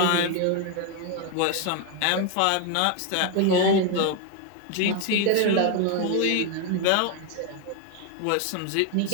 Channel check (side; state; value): both; different; correlation 0.01